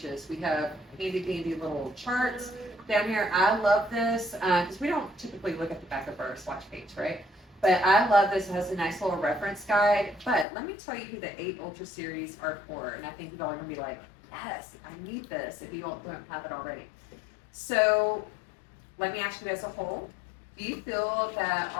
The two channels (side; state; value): right; drops out; at 10.5 s